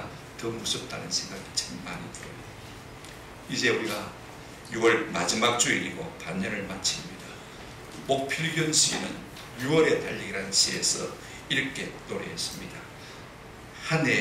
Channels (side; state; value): both; identical; correlation 1.00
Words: 더 무섭다는 생각이 참 많이 들어요. 이제 우리가 6월 마지막 주일이고 반년을 마칩니다. 목필견 시인은 6월의 달리기라는 시에서 이렇게 노래했습니다. 한